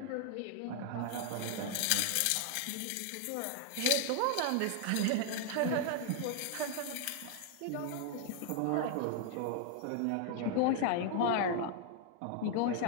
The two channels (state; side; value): different; both; correlation 0.00